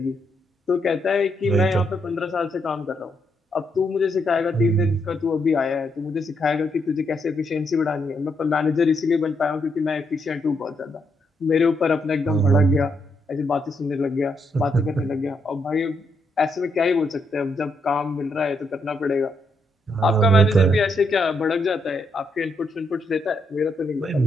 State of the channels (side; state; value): both; normal; correlation 0.78